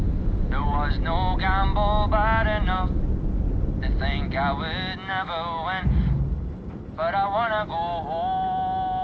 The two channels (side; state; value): both; identical; correlation 1.00